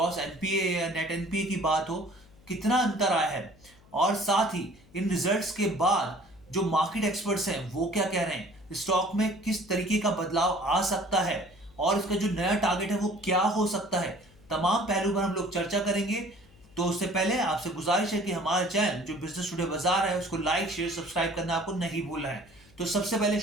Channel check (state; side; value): noise; left; hum, 27 dB below the sound